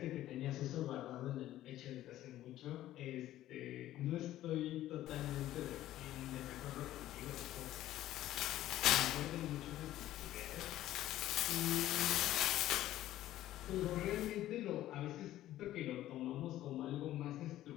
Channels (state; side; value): quieter; right; 13.9 dB